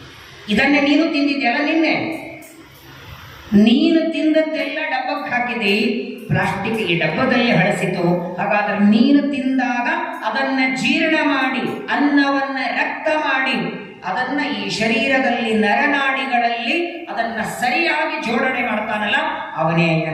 ಇದನ್ನೇ ನೀನು ತಿಂದಿದ್ಯಲ್ಲ ನಿನ್ನೆ, ನೀನು ತಿಂದದ್ದೆಲ್ಲ ಡಬ್ಬಕ್ಕೆ ಹಾಕಿದೆ, ಪ್ಲಾಸ್ಟಿಕ್ ಈ ಡಬ್ಬದಲ್ಲಿ ಹಳಸಿತು. ಹಾಗಾದ್ರೆ ನೀನು ತಿಂದಾಗ ಅದನ್ನ ಜೀರ್ಣ ಮಾಡಿ, ಅನ್ನವನ್ನ ರಕ್ತ ಮಾಡಿ, ಅದನ್ನ ಈ ಶರೀರದಲ್ಲಿ ನರನಾಡಿಗಳಲ್ಲಿ ಅದನ್ನ ಸರಿಯಾಗಿ ಜೋಡಣೆ ಮಾಡ್ತಾನಲ್ಲ, ಅವನೇ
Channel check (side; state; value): both; identical; correlation 1.00